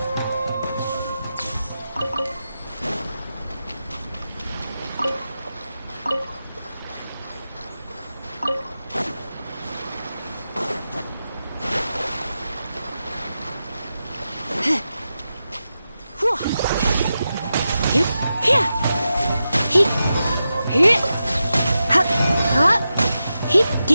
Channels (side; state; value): both; inverted; correlation -0.90